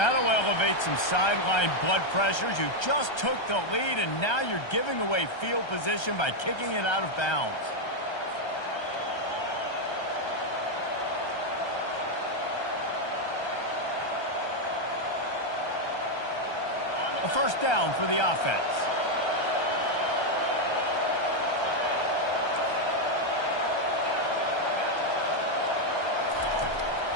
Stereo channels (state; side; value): late; right; 1.3 ms